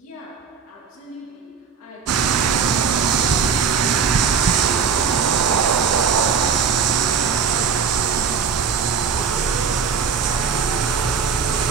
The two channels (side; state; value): left; quieter; 6.3 dB